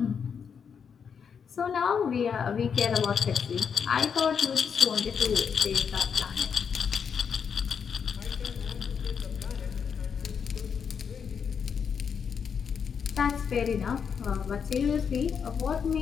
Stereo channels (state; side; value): quieter; right; 6.8 dB